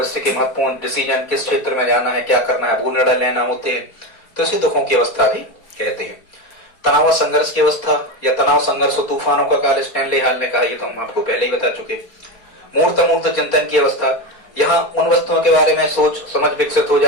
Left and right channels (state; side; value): late; right; 4.3 ms